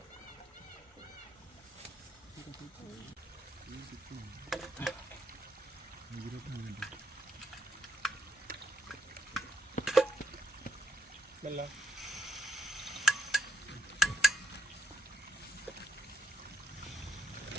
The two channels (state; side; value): normal; both; correlation 0.79